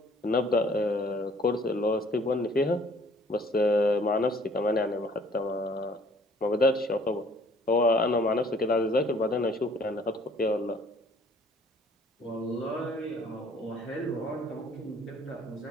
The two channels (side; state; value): both; normal; correlation 0.57